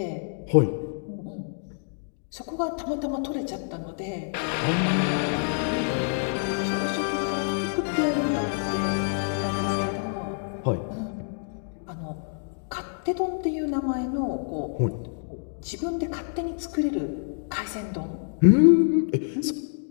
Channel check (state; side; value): silent; right; digital silence